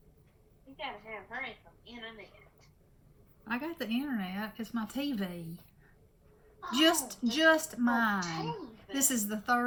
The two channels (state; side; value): identical; both; correlation 1.00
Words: You gotta have her from the internet. I got the internet. It's my TV. Oh, Just mine. TV. This is the